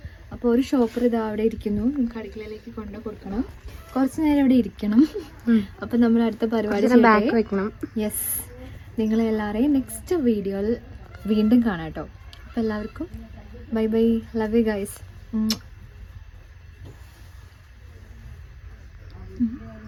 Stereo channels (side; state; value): both; identical; correlation 1.00